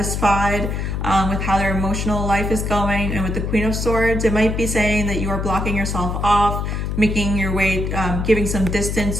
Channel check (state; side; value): noise; left; hum, 2 dB below the sound